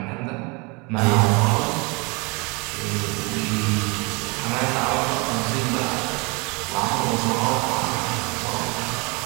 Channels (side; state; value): left; quieter; 29.1 dB